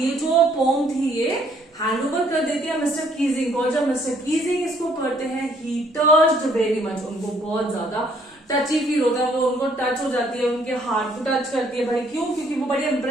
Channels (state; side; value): normal; both; correlation 0.65